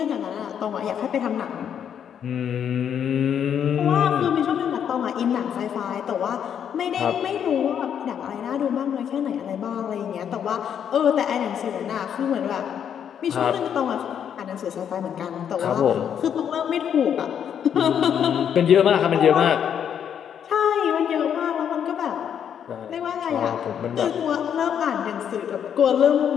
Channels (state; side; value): quieter; right; 8.6 dB